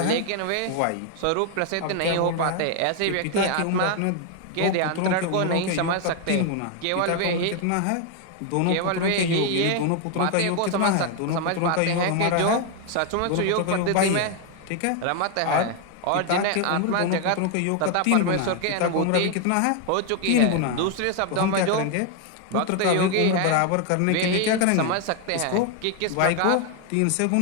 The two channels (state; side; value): different; both; correlation 0.01